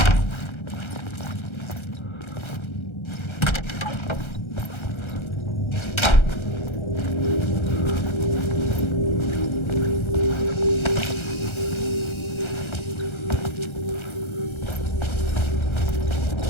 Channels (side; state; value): right; late; 1.3 ms